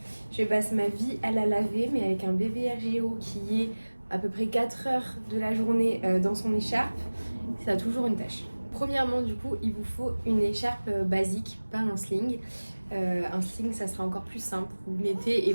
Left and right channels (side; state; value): both; inverted; correlation -1.00